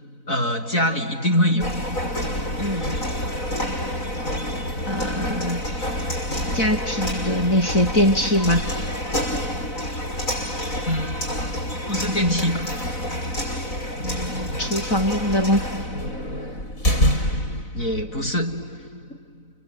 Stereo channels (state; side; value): late; right; 4.0 ms